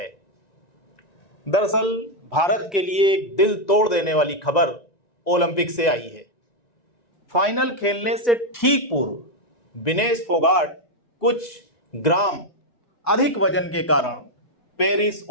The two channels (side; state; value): right; late; 1.9 ms